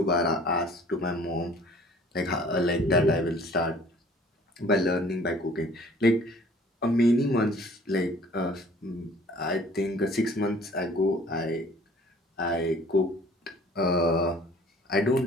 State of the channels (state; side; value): normal; both; correlation 0.52